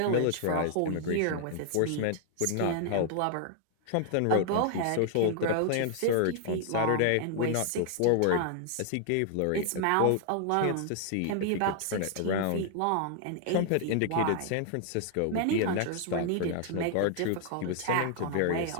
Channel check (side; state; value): both; different; correlation 0.00